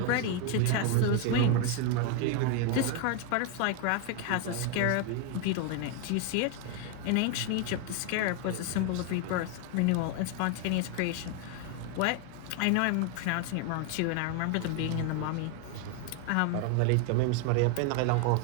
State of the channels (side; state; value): both; different; correlation 0.01